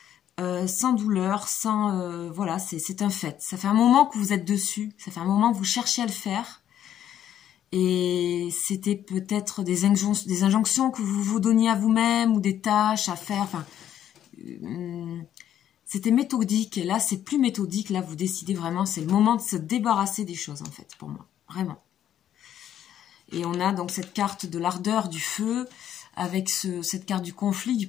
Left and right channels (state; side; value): quieter; right; 10.6 dB